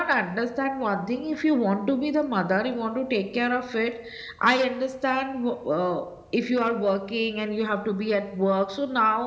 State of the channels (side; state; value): both; identical; correlation 1.00